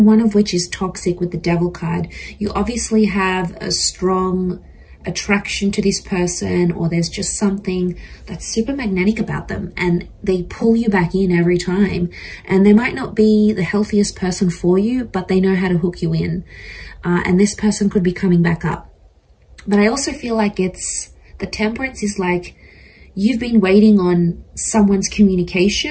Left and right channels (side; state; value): both; identical; correlation 1.00